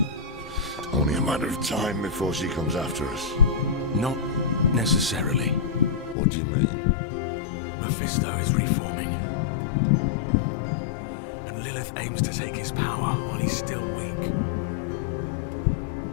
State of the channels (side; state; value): right; drops out; at 6.2 s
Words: Only a matter of time before she comes after us. Not necessarily. What do you mean? Mephisto is reforming. And Lilith aims to take his power while he's still weak.